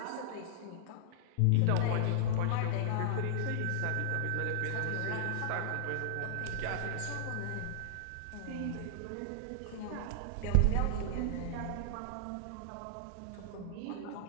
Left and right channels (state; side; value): different; both; correlation -0.01